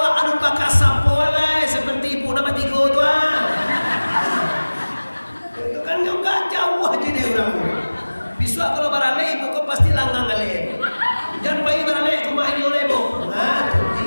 anu pakai sapo lah seperti ibu nama tiga tuan. Itu kan juga jauh aja deh orang. Besok kalau barale ibu kau pasti langgang kali. Jangan pagi barale cuma ini oleh ibu. Nah,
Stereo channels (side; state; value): both; inverted; correlation -1.00